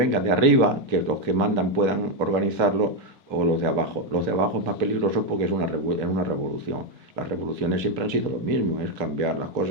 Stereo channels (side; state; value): left; late; 1.8 ms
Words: de arriba, que los que mandan puedan organizarlo, o los de abajo. Los de abajo es más peligroso porque es una revolución. Las revoluciones siempre han sido lo mismo, es cambiar las